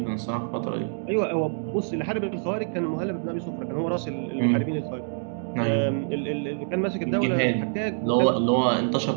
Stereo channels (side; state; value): left; silent; digital silence